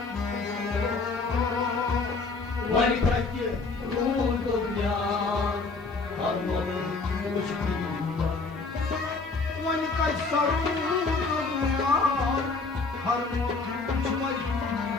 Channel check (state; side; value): quieter; right; 4.0 dB